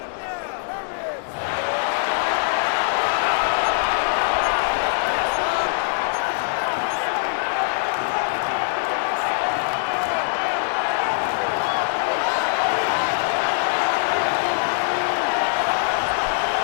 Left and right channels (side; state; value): right; silent; digital silence